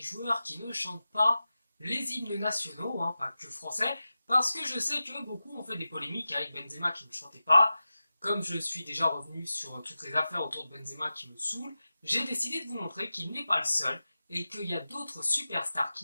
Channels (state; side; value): inverted; both; correlation -0.94